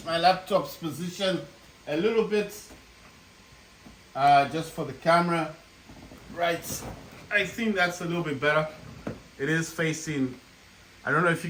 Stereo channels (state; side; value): identical; both; correlation 1.00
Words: my laptop's position a little bit. Just for the camera. Right, I think that's a little bit better. It is facing, I don't know if you